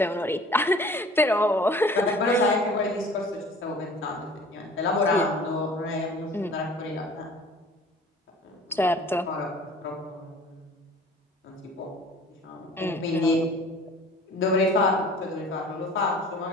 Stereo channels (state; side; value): normal; both; correlation 0.47